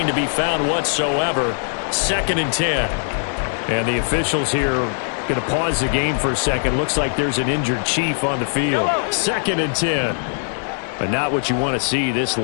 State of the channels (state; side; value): silent; right; digital silence